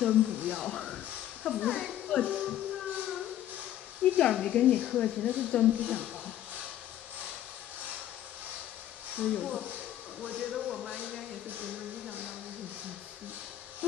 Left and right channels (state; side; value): quieter; right; 12.1 dB